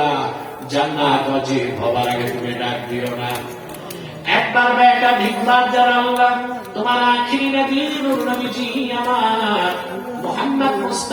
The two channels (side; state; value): both; identical; correlation 1.00